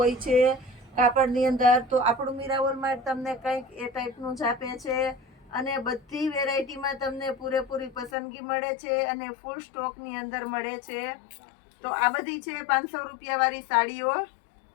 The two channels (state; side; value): drops out; right; at 8.1 s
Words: છે કાપડની અંદર। તો આપણું મીરા વોલમાર્ટ તમને કંઈક એ ટાઈપનું જ આપે છે અને બધી વેરાયટીમાં તમને પૂરેપૂરી પસંદગી મળે છે અને ફૂલ સ્ટોકની અંદર મળે છે। તો આ બધી છે 500 રૂપિયાવાળી સાડીઓ।